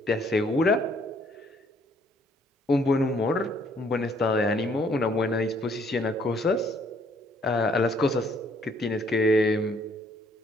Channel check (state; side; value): normal; both; correlation 0.65